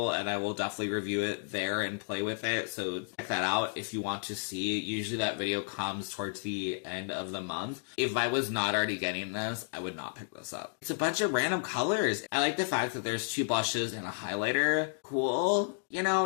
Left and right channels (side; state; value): right; silent; digital silence